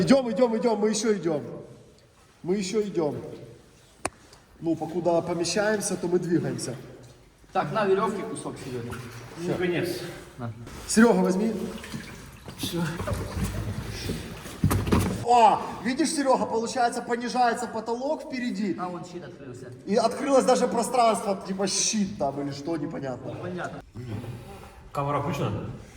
мы еще идем. Мы еще идем. Ну, покуда помещаемся, то мы двигаемся. Так, на веревке кусок Серега. Ну, конець. Серега, возьми. О, видишь, Серега, получается, понижается потолок впереди. А вон щит открылся. И открылось даже пространство, типа щит там или что, непонятно. Понятно. Камера включена?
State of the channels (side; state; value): both; identical; correlation 1.00